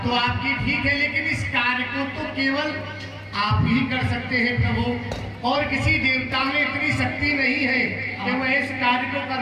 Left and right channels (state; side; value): identical; both; correlation 1.00